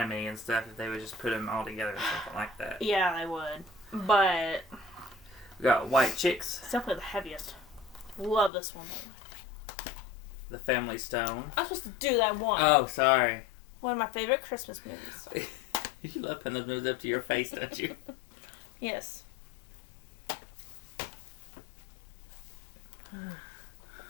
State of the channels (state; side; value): drops out; right; at 8.5 s